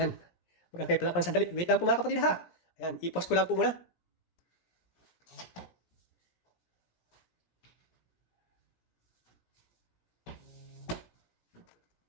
Mag-aantay pala ako ng sandali. Wait lang po mga kapatid ha. Ayan, i-pause ko lang po muna.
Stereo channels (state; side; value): late; right; 17 ms